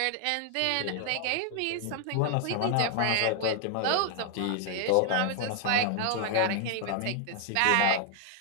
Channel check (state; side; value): different; both; correlation 0.00